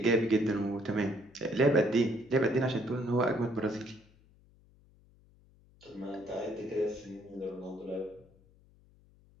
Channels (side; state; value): left; noise; hum, 28 dB below the sound